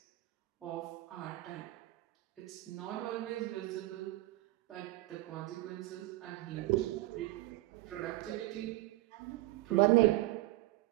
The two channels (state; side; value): quieter; left; 18.1 dB